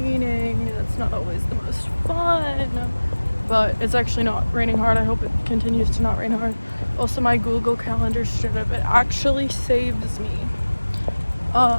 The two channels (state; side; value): inverted; both; correlation -1.00